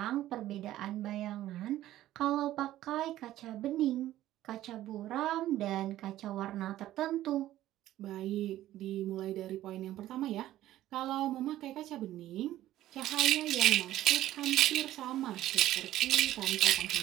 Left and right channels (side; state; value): left; quieter; 14.0 dB